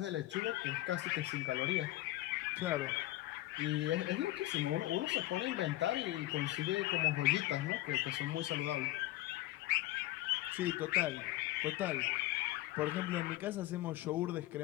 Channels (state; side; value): quieter; right; 16.9 dB